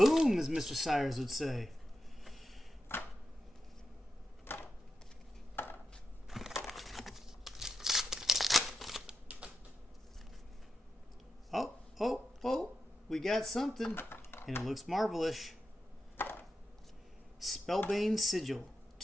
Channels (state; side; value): normal; both; correlation 0.90